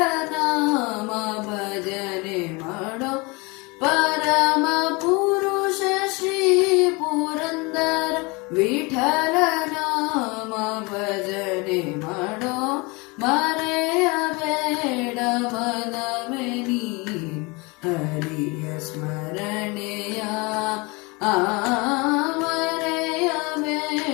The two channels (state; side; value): quieter; right; 26.9 dB